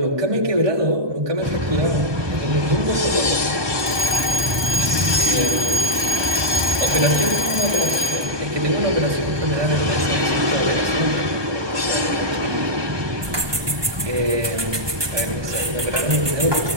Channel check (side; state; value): left; late; 1.2 ms